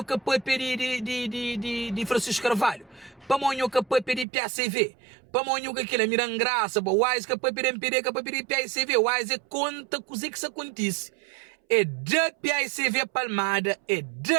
que pode pedir de Francisco Carvalho. Para Monho que pode pedir PACV. Para Monho que aquilo é mirando graça. Para Wise que pode pedir MPD, que pode pedir PACV. Wise é conta coisa que isso acontece. É de PACV Palmada, é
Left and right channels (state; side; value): drops out; left; at 4.2 s